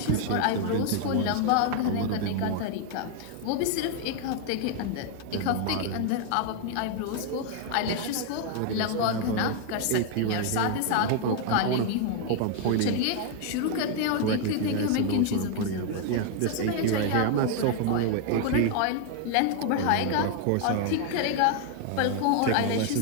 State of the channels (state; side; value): different; both; correlation 0.00